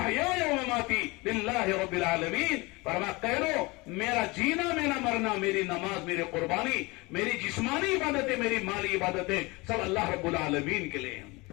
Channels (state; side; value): quieter; right; 24.5 dB